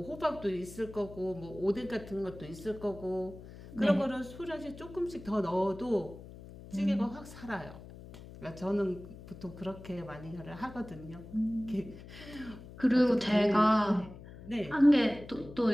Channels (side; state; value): left; noise; hum, 16 dB below the sound